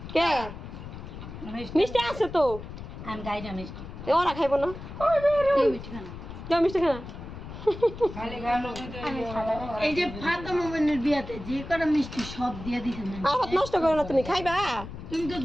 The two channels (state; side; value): noise; left; rumble, 11 dB below the sound